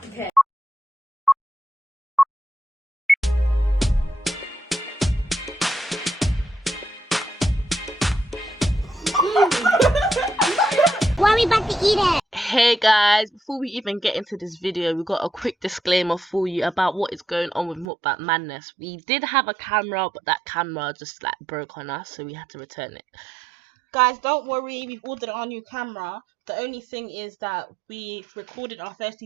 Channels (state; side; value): drops out; left; at 17.9 s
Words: Why are we about to eat it? Hey guys, before we even get into this video, we got a quick disclaimer for you about what is going on with Mukbang Madness. We did have a camera, but that camera just like broke on us, so we had to return it. Guys, don't worry, we've ordered our new camera. The only thing is that we recorded our first two